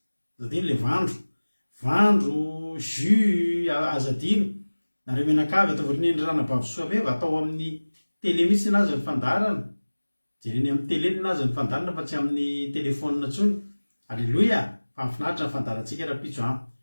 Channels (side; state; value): both; inverted; correlation -1.00